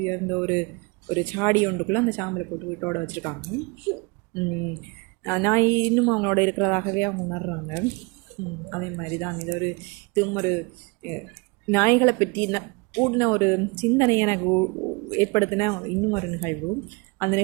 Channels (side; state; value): left; quieter; 28.2 dB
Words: உயர்ந்த ஒரு சாடி ஒன்றுக்குள்ளே அந்த சாம்பலை போட்டு வீட்டோட வச்சுருக்காங்க. நாய் இன்னும் அவங்களோட இருக்கிறதாகவே அவங்க உணர்றாங்க. அதே மாதிரி தான் இதுவும் ஒரு நாய்களை பற்றி கூடின ஒரு சிந்தனை எனக்கு ஏற்படுத்தின இன்னும் ஒரு நிகழ்வு. அந்த